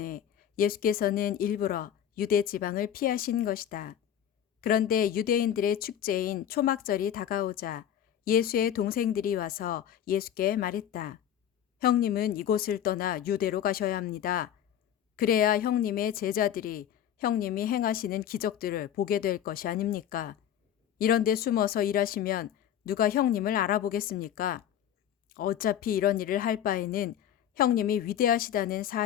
예수께서는 일부러 유대 지방을 피하신 것이다. 그런데 유대인들의 축제인 초막절이 다가오자 예수의 동생들이 와서 예수께 말했다. 형님은 이곳을 떠나 유대로 가셔야 합니다. 그래야 형님의 제자들이 형님이 행하시는 기적들을 보게 될 것이 아닙니까? 이런데 숨어서 일하시면 누가 형님을 알아보겠습니까? 어차피 이런 일을 할 바에는 형님이 위대하시다는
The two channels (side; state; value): right; quieter; 10.1 dB